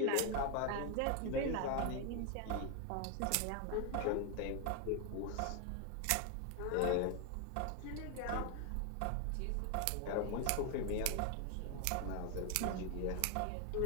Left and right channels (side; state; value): both; different; correlation 0.00